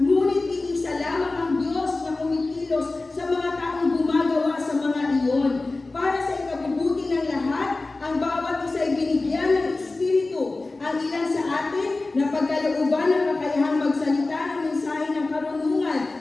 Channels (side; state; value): right; quieter; 3.3 dB